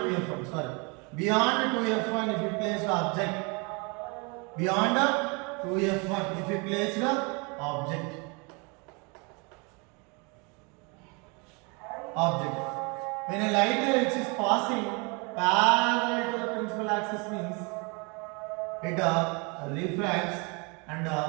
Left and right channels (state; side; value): quieter; left; 31.1 dB